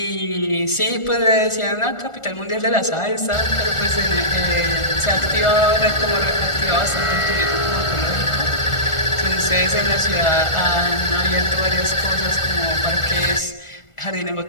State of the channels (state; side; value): late; right; 1.4 ms